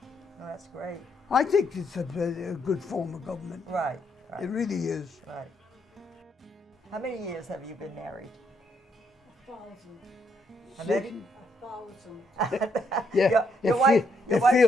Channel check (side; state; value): both; normal; correlation 0.75